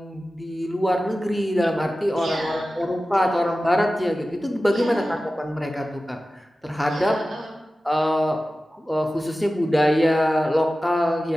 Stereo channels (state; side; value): normal; both; correlation 0.95